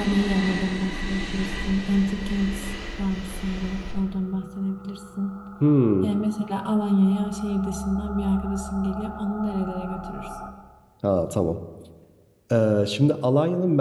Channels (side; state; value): both; identical; correlation 1.00